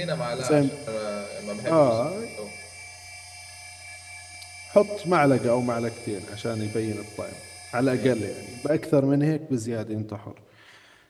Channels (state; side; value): identical; both; correlation 1.00